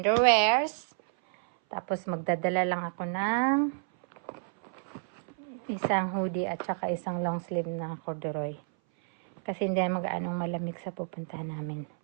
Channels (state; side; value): silent; left; 57 dB below the other